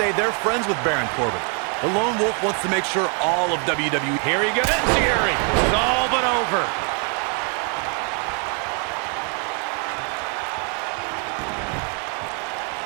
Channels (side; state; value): left; quieter; 39.5 dB